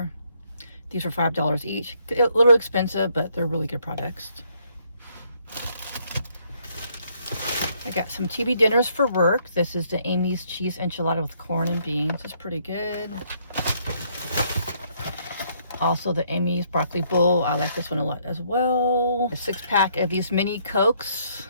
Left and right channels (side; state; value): both; inverted; correlation -0.69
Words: These were $5 each. A little expensive, but they're really good products. I got some TV dinners for work. This is the Amy's cheese enchilada with corn and beans. It's pretty good. Also the Amy's broccoli bowl. I like this one a lot as well. A 6-pack of these mini Cokes.